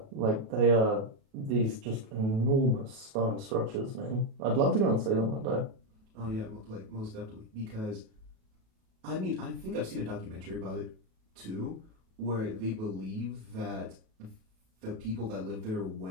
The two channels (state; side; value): late; left; 37 ms